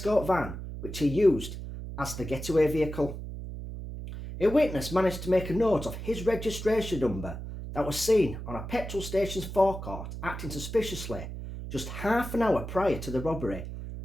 van, which he used as the getaway vehicle. A witness managed to make a note of his registration number that was seen on a petrol station's forecourt acting suspiciously just half an hour prior to the robbery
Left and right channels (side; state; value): right; noise; hum, 8 dB below the sound